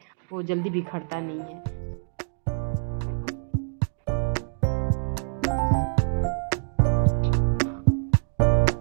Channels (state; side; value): silent; left; 61 dB below the other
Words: वो जल्दी बिखरता नहीं है।